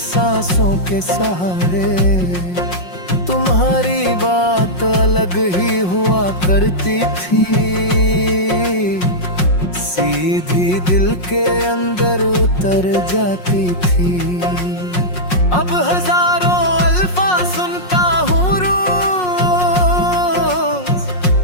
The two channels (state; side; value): late; right; 5.5 ms